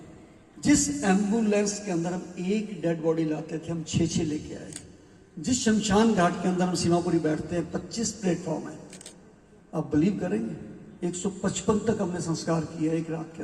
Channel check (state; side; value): identical; both; correlation 1.00